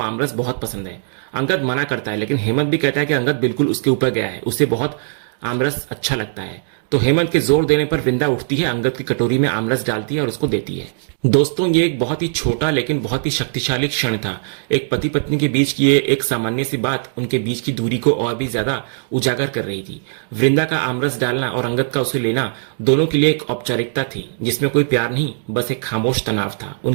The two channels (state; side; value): silent; left; digital silence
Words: आमरस बहुत पसंद है। अंगद मना करता है लेकिन हेमंत भी कहता है कि अंगद बिल्कुल उसके ऊपर गया है, उसे बहुत आमरस अच्छा लगता है। तो हेमंत के जोर देने पर वृंदा उठती है, अंगद की कटोरी में आमरस डालती है और उसको देती है। दोस्तों, ये एक बहुत ही छोटा लेकिन बहुत ही शक्तिशाली क्षण था। एक पति पत्नी के बीच की ये एक सामान्य सी बात उनके बीच की दूरी को और भी ज्यादा उजागर कर रही थी। वृंदा का आमरस डालना और अंगद का उसे लेना दोनों के लिए एक औपचारिकता थी जिसमें कोई प्यार नहीं, बस एक खामोश तनाव था।